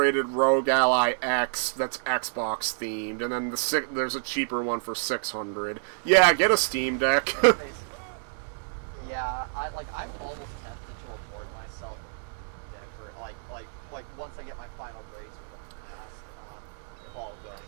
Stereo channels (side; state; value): left; silent; digital silence